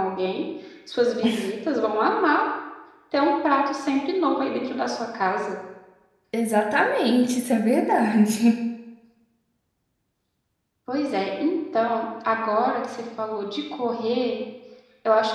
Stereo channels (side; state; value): both; identical; correlation 1.00